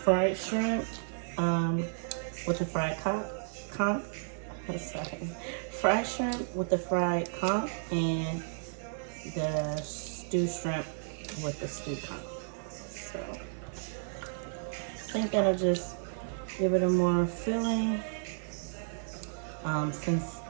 shrimp with the fried conch. Sorry, fried shrimp with the fried conch and the stewed shrimp with the stewed conch. So I think that'll just give it a more filling. Since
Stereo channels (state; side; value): silent; left; digital silence